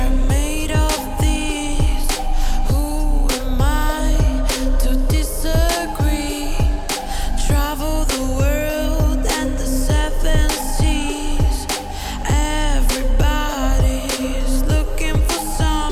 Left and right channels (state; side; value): identical; both; correlation 1.00